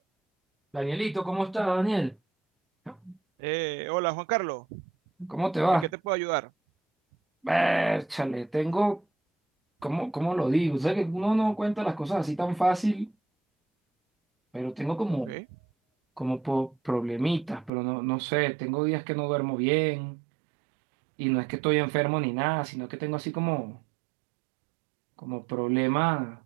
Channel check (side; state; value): left; drops out; at 17.7 s